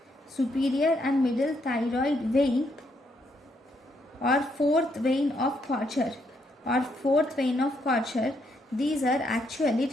Superior and middle thyroid vein or fourth vein of Kocher these are actually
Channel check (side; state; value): both; normal; correlation 0.75